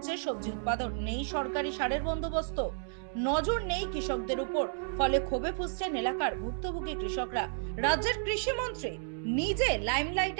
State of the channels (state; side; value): silent; left; digital silence